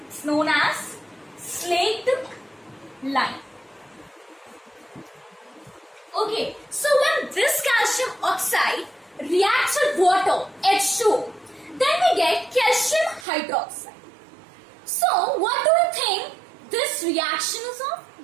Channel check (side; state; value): left; drops out; at 13.2 s